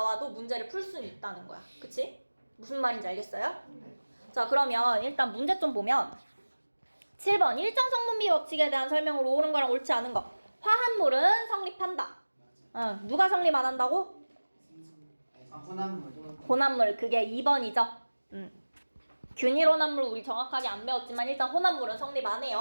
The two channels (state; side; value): inverted; both; correlation -1.00